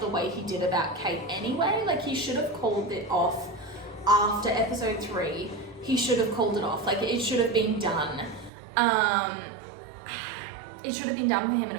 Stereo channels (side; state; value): left; drops out; at 8.5 s